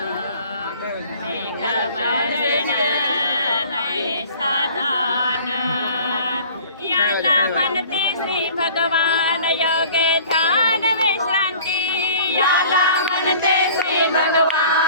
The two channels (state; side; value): inverted; both; correlation -0.48